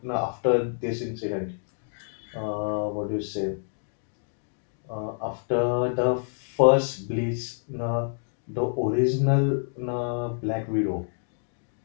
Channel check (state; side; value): silent; right; digital silence